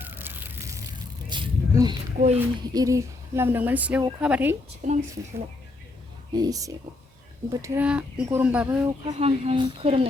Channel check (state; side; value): quieter; right; 3.2 dB